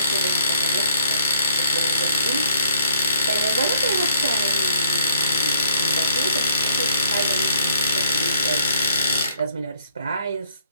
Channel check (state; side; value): inverted; both; correlation -0.65